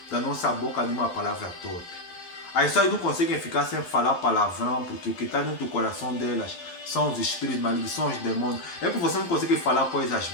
da nossa boca nenhuma palavra torpe. As pessoas não conseguem ficar sem falar palavrão, porque o que está dentro do coração delas são os espíritos malignos, são os demônios. É porque você não consegue falar coisas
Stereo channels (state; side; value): late; right; 12 ms